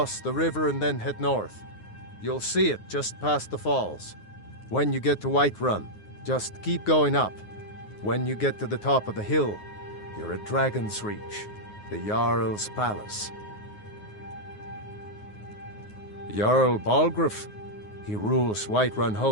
the river and then head north. You'll see it just past the falls. When you get to Whiterun, just keep going up. When you get to the top of the hill, you're at Dragon's Reach, the Jarl's palace. Jarl Balgruuf, he rules Whiterun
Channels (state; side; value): late; right; 9.5 ms